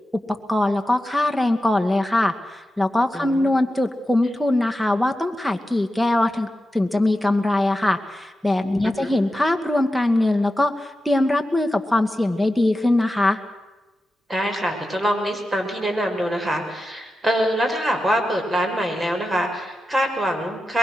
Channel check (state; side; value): normal; both; correlation 0.91